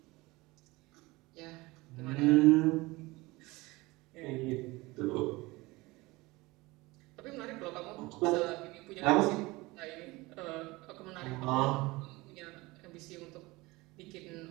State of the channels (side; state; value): left; quieter; 22.0 dB